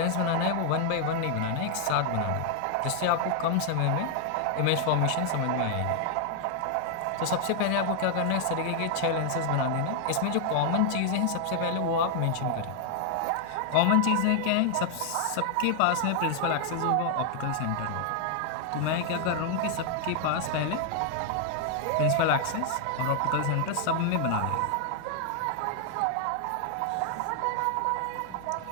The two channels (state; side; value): different; both; correlation 0.00